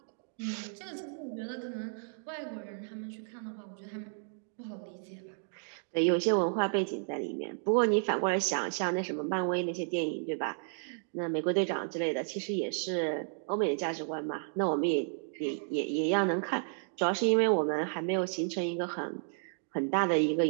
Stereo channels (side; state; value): left; silent; digital silence